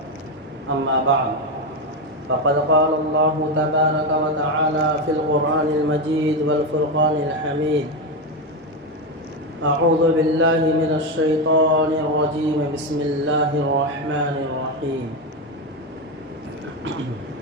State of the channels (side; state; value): both; normal; correlation 0.11